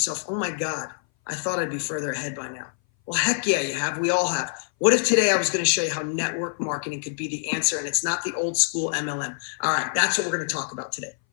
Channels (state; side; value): silent; right; 59 dB below the other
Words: oh my God, I thought I'd be further ahead by now? Well, heck yeah, you have. We all have. What if today I was going to show you how network marketing could be the answer, and it's not the old school MLM? All right, that's what we're going to talk about today.